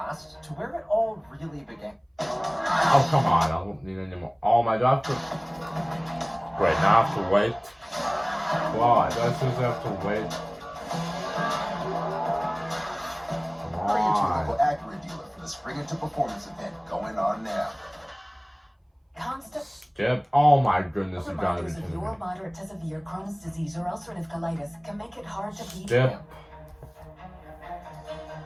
to where it all really began. Oh, come on. I don't need any more. Oh my god. Wait, now I have to wait. Wow, I just have to wait. Bring it to your local Acura dealer for the Spring Into Performance event going on now. Skip. Oh my goodness, you gotta be Reminders of kidding me. your moderate to severe Crohn's disease or ulcerative colitis can make it hard to beat Skip. them.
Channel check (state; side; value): identical; both; correlation 1.00